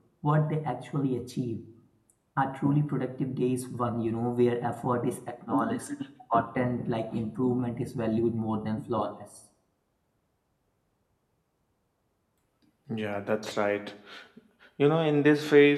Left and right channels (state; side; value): identical; both; correlation 1.00